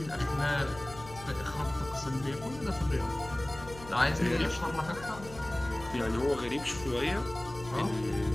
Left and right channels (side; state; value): left; noise; hum, 16 dB below the sound